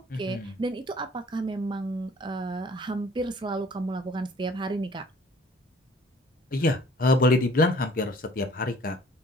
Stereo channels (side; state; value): both; normal; correlation 0.54